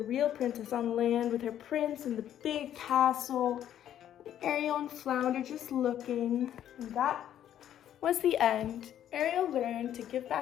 real princess on land with her prince in the big castle. Ariel and Flounder just looking. And that was the end. Ariel learned to give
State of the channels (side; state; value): right; quieter; 10.8 dB